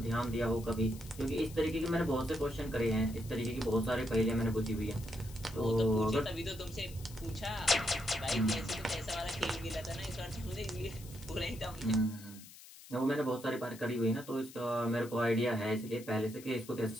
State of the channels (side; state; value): left; noise; hiss, 18 dB below the sound